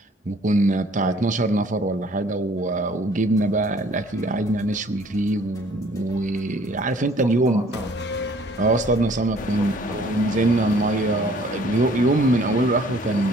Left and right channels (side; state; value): both; normal; correlation 0.56